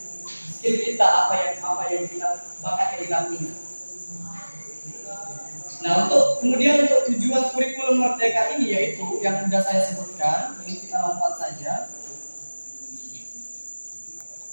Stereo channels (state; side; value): inverted; both; correlation -1.00